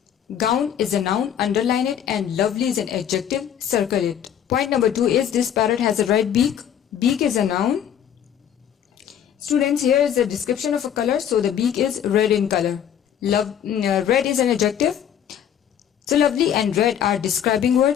Gown is a noun, underline it, and lovely is an adjective, circle it. Point number 2 is this parrot has a red beak. Beak is a noun. Students, here is a description of a color, so the beak is red in color. Red is an adjective. So lovely and red are describing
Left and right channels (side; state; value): right; quieter; 9.4 dB